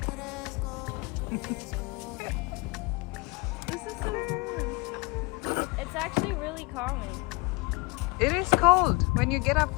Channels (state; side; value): quieter; right; 26.8 dB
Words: This is so fun. It's actually really calming. It is cold when you get up